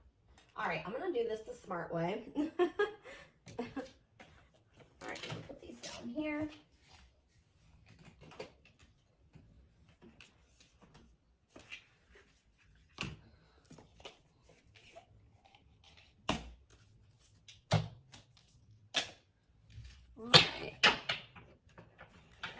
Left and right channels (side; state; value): both; identical; correlation 1.00